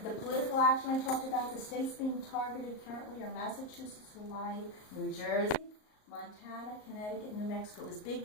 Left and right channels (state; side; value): late; right; 38 ms